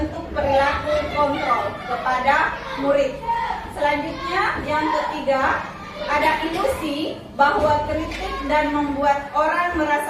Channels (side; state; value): both; identical; correlation 1.00